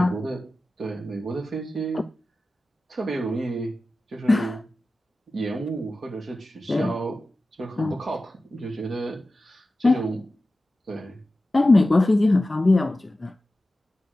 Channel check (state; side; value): normal; both; correlation 0.95